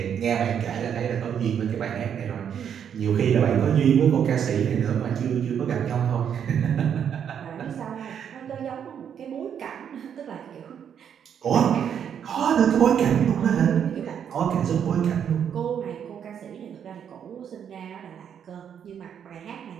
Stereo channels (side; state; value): left; quieter; 8.4 dB